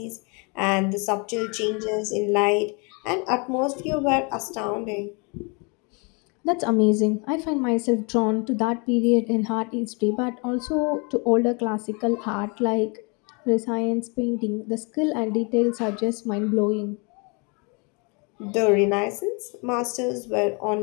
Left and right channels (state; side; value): quieter; right; 32.5 dB